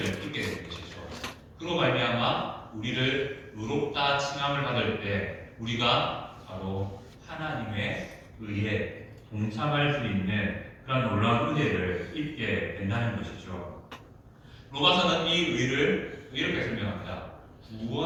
입게 되는 것이죠. 그로 말미암아 우리를 의롭다 칭함을 받을 때 우리가 바로 하나님의 의에 동참할 수 있는 그런 놀라운 은혜를 입게 된다는 것이죠. 로마서는 이 의를 이렇게 설명합니다.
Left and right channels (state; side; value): identical; both; correlation 1.00